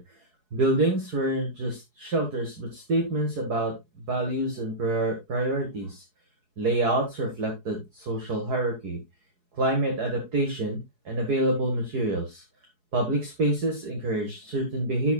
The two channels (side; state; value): left; late; 4.7 ms